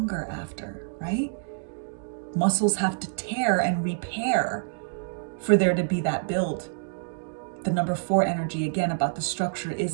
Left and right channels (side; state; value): left; silent; digital silence